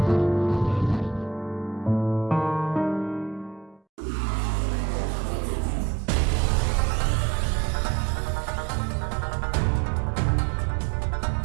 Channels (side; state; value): left; drops out; at 3.8 s